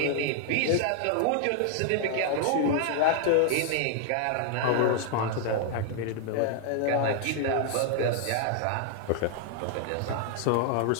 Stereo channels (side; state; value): both; different; correlation 0.00